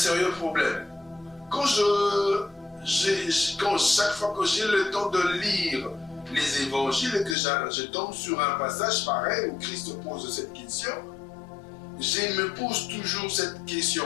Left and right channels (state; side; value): drops out; right; at 7.4 s